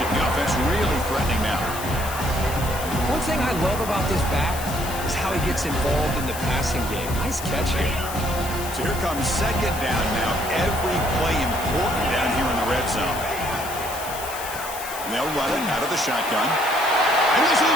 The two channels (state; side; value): noise; left; hiss, 10 dB below the sound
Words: The offense really threatening now. One thing I love about this back is how he gets involved in the passing game. Nice catch here. So here comes second down now. Every play important down here in the red zone. And they'll run it out of the shotgun. And he's